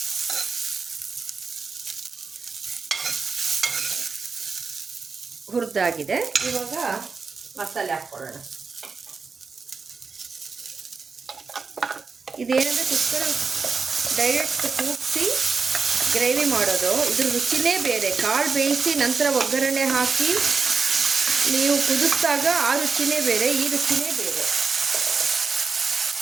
ಹುರಿದಾಗಿದೆ. ಇವಾಗ ಮಸಾಲೆ ಹಾಕ್ಕೊಳ್ಳೋಣ. ಇದೇನೆಂದರೆ ಕುಕ್ಕರ್ ಡೈರೆಕ್ಟ್ ಕೂಗಿಸಿ ಗ್ರೇವಿ ಮಾಡೋದು, ಇದ್ರ ರುಚಿನೇ ಬೇರೆ. ಕಾಳು ಬೇಯಿಸಿ ನಂತರ ಒಗ್ಗರಣೆ ಹಾಕಿ ನೀವು ಕುದಿಸಿದಾಗ ಆ ರುಚಿನೇ ಬೇರೆ, ಈ ರುಚಿನೇ ಬೇರೆ.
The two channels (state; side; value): quieter; left; 4.8 dB